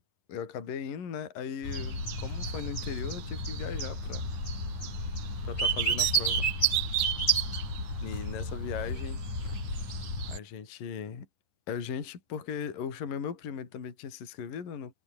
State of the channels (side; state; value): right; late; 10 ms